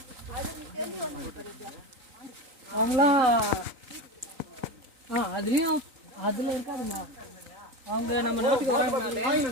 அவங்களாம் அதுலேயும் அதில் இருக்காதுமா. அவங்க நம்ம நாட்டுக்கு வராங்கனாலே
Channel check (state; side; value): late; left; 3.9 ms